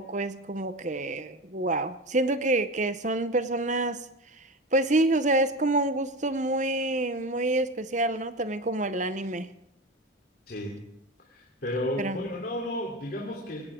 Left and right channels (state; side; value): normal; both; correlation 0.25